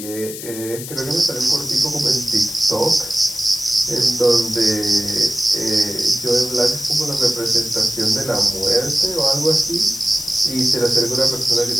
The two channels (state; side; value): noise; left; hiss, 10 dB below the sound